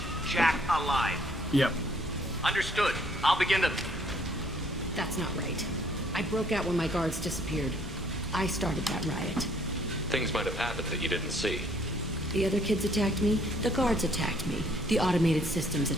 Jack alive. Yep. Understood. I'll begin to... That's not right. I broke out when my guards disappeared. I started that riot. Things might have happened that you didn't see. The other kids attacked me. The guards attacked me. The automated systems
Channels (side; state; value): both; normal; correlation 0.64